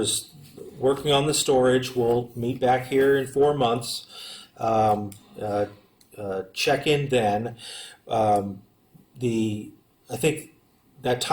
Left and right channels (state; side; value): identical; both; correlation 1.00